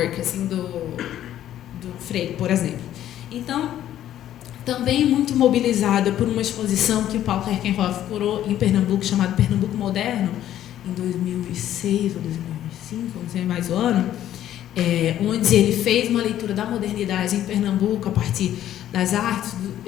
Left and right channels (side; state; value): right; quieter; 11.9 dB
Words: assim, do Freire, por exemplo. Então, também muito mobilizada por uma exposição que o Paulo Herkenhoff curou em Pernambuco, chamada Pernambuco Moderno, em 2006 ou 2005, não sei mais o ano, onde ele fez uma leitura da modernidade em Pernambuco a partir das artes,